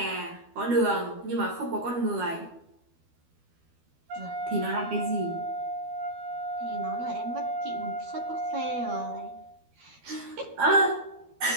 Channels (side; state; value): left; late; 12 ms